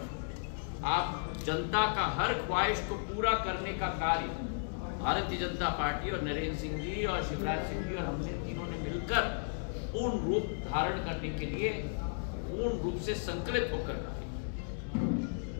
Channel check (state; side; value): silent; right; digital silence